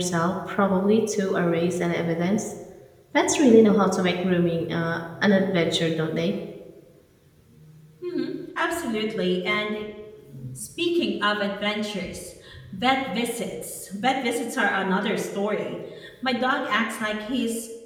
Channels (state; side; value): identical; both; correlation 1.00